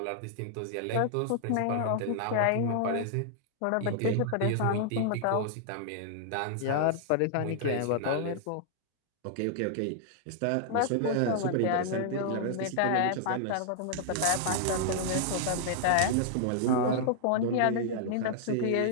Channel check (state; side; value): different; both; correlation -0.01